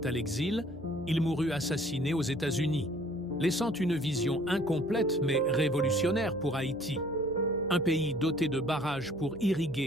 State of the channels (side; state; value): right; noise; hum, 17 dB below the sound